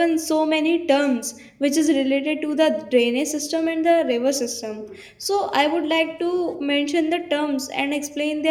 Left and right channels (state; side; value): identical; both; correlation 1.00